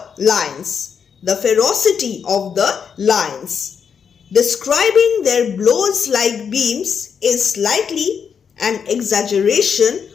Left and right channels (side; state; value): right; quieter; 6.8 dB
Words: lions, the ferocity of the lions. Describing their blows like beams is slightly an exaggeration